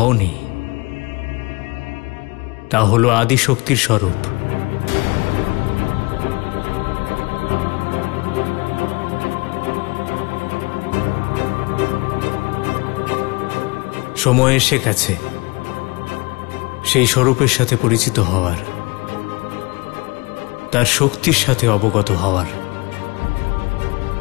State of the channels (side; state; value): right; quieter; 26.0 dB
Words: তা হলো আদিশক্তির স্বরূপ। সময় এসে গেছে সেই স্বরূপের সাথে পরিচিত হওয়ার, তার শক্তির সাথে অবগত হওয়ার।